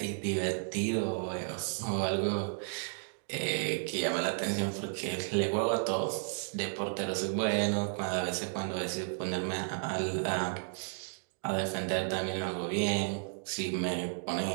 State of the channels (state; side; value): silent; left; digital silence